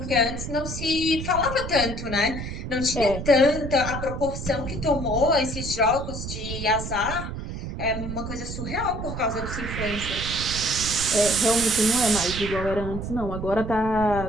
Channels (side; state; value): right; noise; rumble, 6 dB below the sound